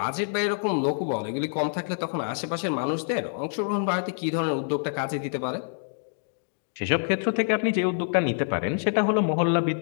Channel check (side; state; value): right; silent; digital silence